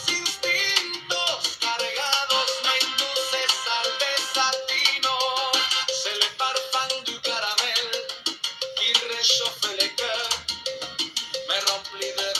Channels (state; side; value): identical; both; correlation 1.00